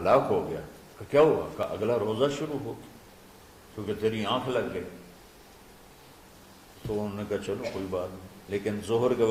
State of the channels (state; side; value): identical; both; correlation 1.00